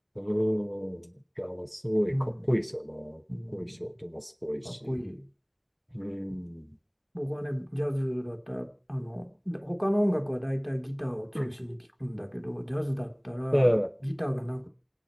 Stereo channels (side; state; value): both; identical; correlation 1.00